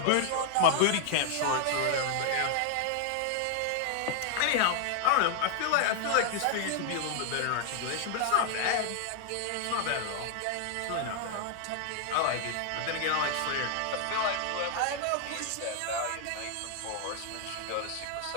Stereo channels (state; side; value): different; both; correlation 0.00